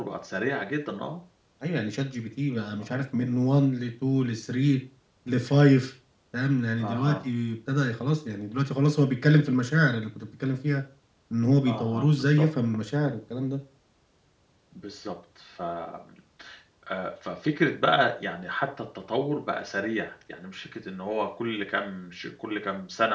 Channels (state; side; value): identical; both; correlation 1.00